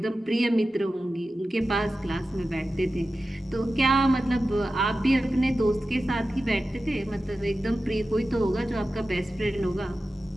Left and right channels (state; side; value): normal; both; correlation 0.94